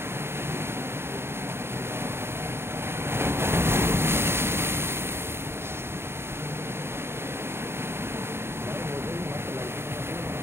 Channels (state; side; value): late; left; 0.12 ms